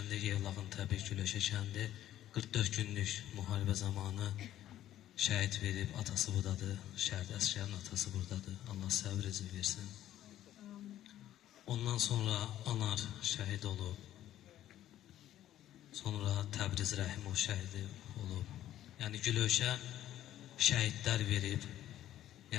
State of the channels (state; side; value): quieter; right; 12.7 dB